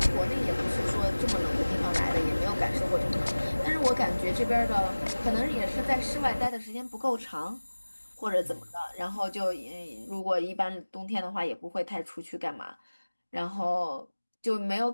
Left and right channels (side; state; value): both; inverted; correlation -1.00